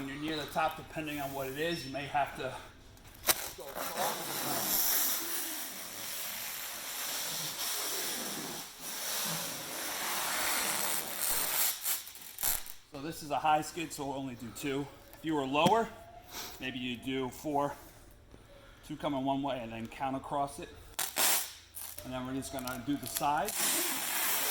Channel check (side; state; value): both; identical; correlation 1.00